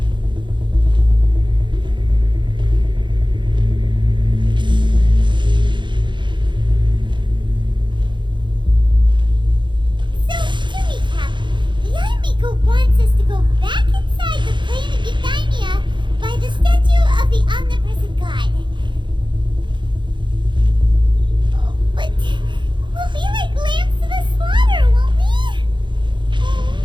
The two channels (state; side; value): late; left; 0.23 ms